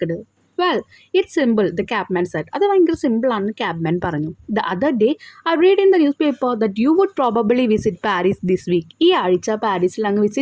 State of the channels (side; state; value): both; identical; correlation 1.00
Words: Well it's simple, the cabman said. അത് ഭയങ്കര സിമ്പിളാണെന്ന് ക്യാബ്മാൻ പറഞ്ഞു. The other day I read in the newspaper that you would probably visit Paris this week. ഈ ആഴ്ച പാരീസിൽ അങ്ങ്